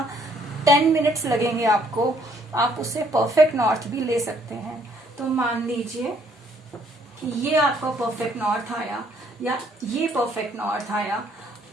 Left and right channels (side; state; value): both; normal; correlation 0.65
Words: 10 मिनट्स लगेंगे आपको। आप उससे परफेक्ट नॉर्थ भी ले सकते हैं। तो मान लीजिए कि ये आपका परफेक्ट नॉर्थ आया, या ये परफेक्ट नॉर्थ आया,